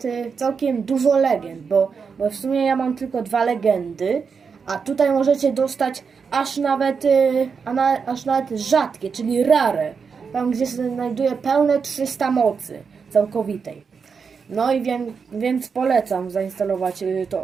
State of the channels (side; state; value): left; quieter; 5.7 dB